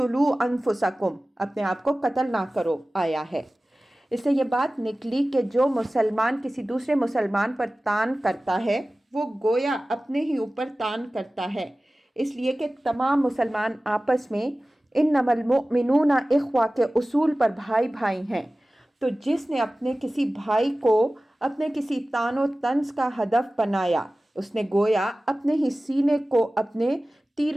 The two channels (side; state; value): both; normal; correlation 0.97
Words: انفسکم، اپنے آپ کو قتل نہ کرو آیا ہے۔ اس سے یہ بات نکلی کہ جو مسلمان کسی دوسرے مسلمان پر تان کرتا ہے وہ گویا اپنے ہی اوپر تان کرتا ہے، اس لیے کہ تمام مسلمان آپس میں انما المؤمنون اخوہ کے اصول پر بھائی بھائی ہیں، تو جس نے اپنے کسی بھائی کو اپنے کسی تان و طنز کا ہدف بنایا اس نے گویا اپنے ہی سینے کو اپنے تیر